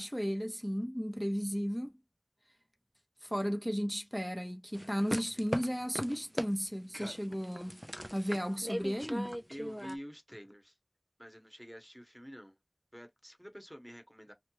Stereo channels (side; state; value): both; identical; correlation 1.00